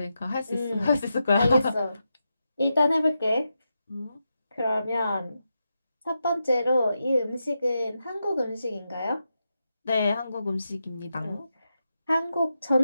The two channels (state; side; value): inverted; both; correlation -0.88